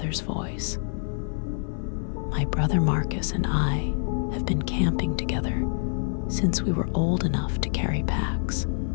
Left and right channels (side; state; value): right; silent; 56 dB below the other